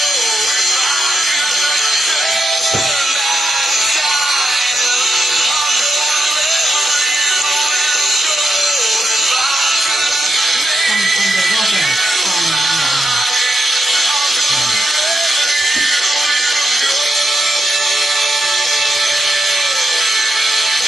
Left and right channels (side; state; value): both; normal; correlation 0.84